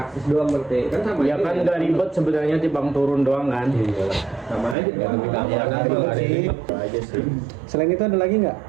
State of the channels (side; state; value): left; drops out; at 4.8 s